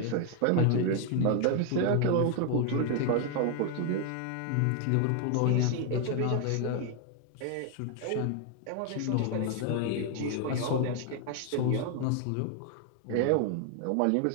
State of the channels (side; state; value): both; different; correlation 0.00